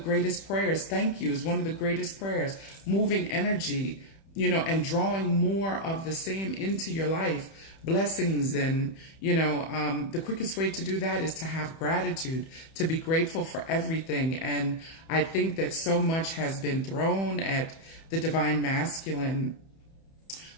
prayers. Thank you is one of the greatest prayers. Moving energy, and drawing more of the same into your life. Blessings and, the quickest way to do that is to have gratitude, to be grateful for everything. And I think that so much has been thrown at the Divine Masculine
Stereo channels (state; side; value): late; right; 31 ms